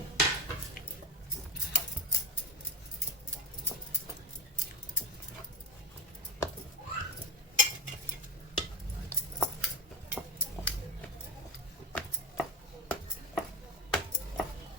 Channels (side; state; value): both; normal; correlation 0.22